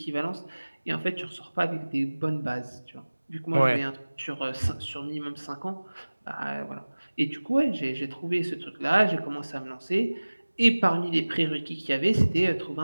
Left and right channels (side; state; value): both; inverted; correlation -1.00